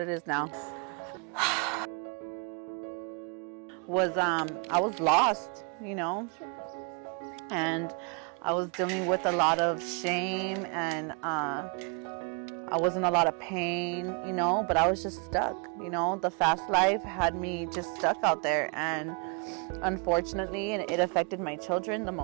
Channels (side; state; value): left; quieter; 35.5 dB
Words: it is now. I was lost, you know, and I was dealing with a lot of shame, and I was in a lot of pain, you know, but I was just stuck, you know. The fast life had me just stuck out there, and unfortunately it affected my children the